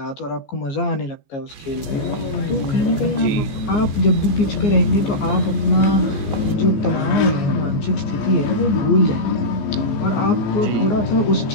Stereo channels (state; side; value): late; right; 14 ms